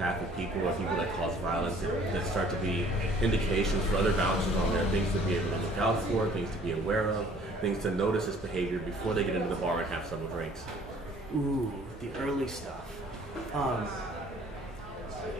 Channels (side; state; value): both; normal; correlation 0.55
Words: people or people that cause violence that start to be indications for other bouncers on there, things to be able to look out for, things to be aware of, things to notice this behavior before they get into the bar and have several drinks? Ooh, the early stuff.